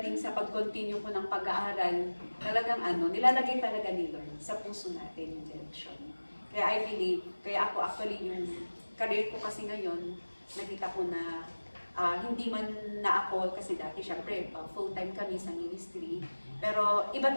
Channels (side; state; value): both; inverted; correlation -1.00